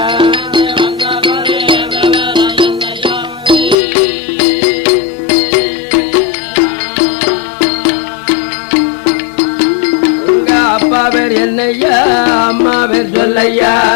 அப்பா பேர் என்னையா அம்மா பேர் சொல்லையா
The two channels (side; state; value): right; drops out; at 3.8 s